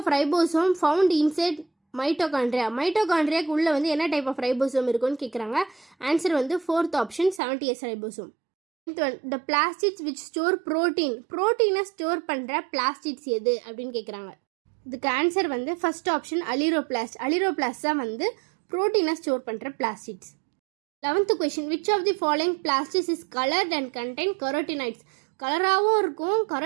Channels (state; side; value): drops out; left; at 7.4 s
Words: ribosome found inside mitochondria. மைட்டோகாண்ட்ரியாக்கு உள்ளே வந்து என்ன டைப் ஆஃப் ரைபோசோம் இருக்குன்னு கேட்குறாங்க. ஆன்சர் வந்து fourth option 70S ribosome. Ninth one, the plastids which store protein. ப்ரோட்டீனை ஸ்டோர் பண்ணுற பிளாஸ்டிட்ஸ் எது அப்படின்னு கேட்குறாங்க. இதுக்கு ஆன்சர் வந்து ஃபர்ஸ்ட் ஆப்ஷன் அலிரோபிளாஸ்ட். அலிரோபிளாஸ்ட் தான் வந்து ப்ரோட்டீனை ஸ்டோர் பண்ணுற plastids. 11th question, which of the following plastics is coloured and contain carotenoids. கலராகவும் இருக்கும்,